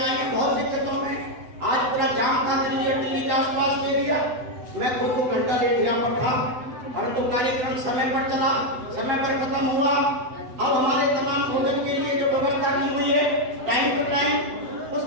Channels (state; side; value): late; left; 7.9 ms